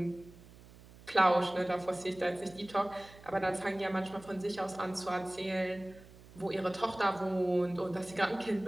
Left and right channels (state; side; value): noise; right; hum, 21 dB below the sound